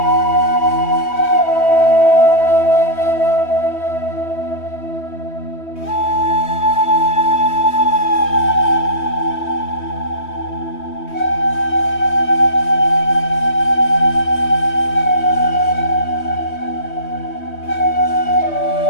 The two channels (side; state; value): right; late; 3.2 ms